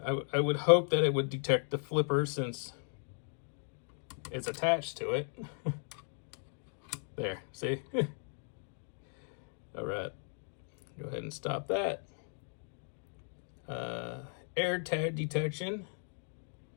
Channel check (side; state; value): right; silent; 53 dB below the other